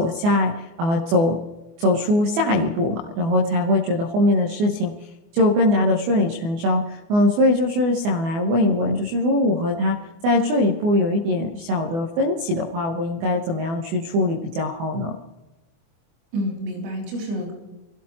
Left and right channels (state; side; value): late; left; 24 ms